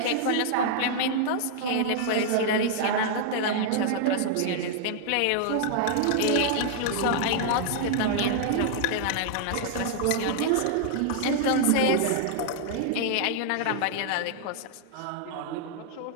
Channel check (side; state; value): both; different; correlation -0.01